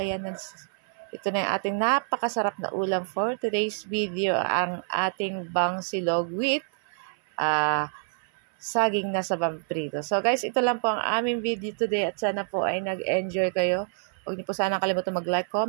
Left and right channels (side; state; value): left; silent; 60 dB below the other